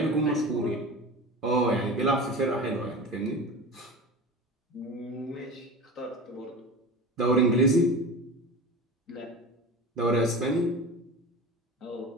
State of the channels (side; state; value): both; normal; correlation 0.32